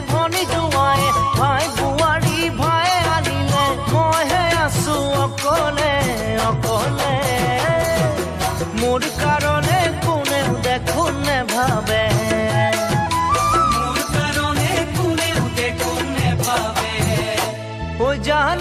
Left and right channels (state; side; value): identical; both; correlation 1.00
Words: ভনী জোঁৱায়ে ভাই বোৱাৰী ভাই আনিলে মইহে আছো অকলে অকলে মোৰ কাৰণে কোনেও দেখোন নেভাবে মোৰ কাৰণে কোনেও দেখোন নেভাবে ও